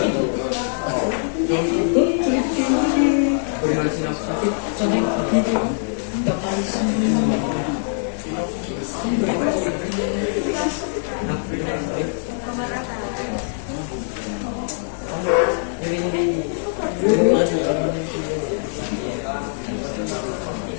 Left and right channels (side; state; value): right; silent; digital silence